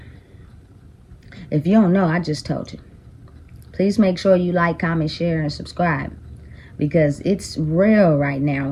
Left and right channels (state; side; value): identical; both; correlation 1.00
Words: If you don't know, I just told you. Please make sure you like, comment, share, and subscribe. Because it's real right now